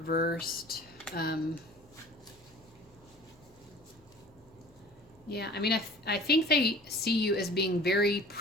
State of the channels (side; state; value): left; noise; hum, 30 dB below the sound